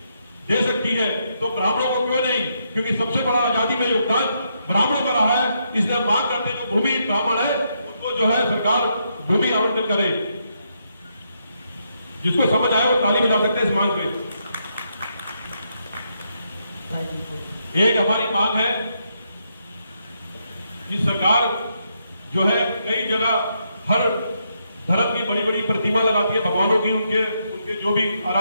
दे सकती है तो ब्राह्मणों को क्यों नहीं? क्योंकि सबसे बड़ा आजादी में योगदान ब्राह्मणों का रहा है। इसलिए मांग करते हैं जो भूमि ब्राह्मण है उसको जो है सरकार भूमि आवंटन करे। जिसको समझ आए वो ताली बजा सकते हैं इस मांग में। एक हमारी मांग है कि सरकार जो है कई जगह हर धर्म की बड़ी बड़ी प्रतिमा लगाती है भगवानों की, उनके जो भी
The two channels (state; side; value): inverted; both; correlation -0.78